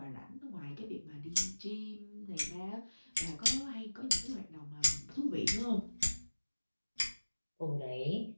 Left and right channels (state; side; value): inverted; both; correlation -1.00